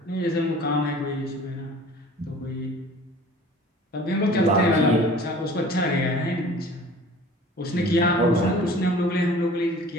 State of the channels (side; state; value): both; normal; correlation 0.45